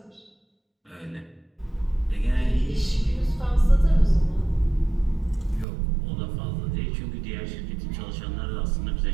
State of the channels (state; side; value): drops out; left; at 5.7 s